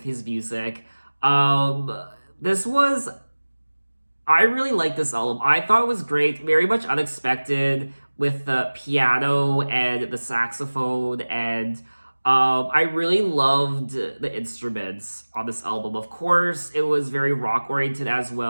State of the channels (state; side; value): inverted; both; correlation -1.00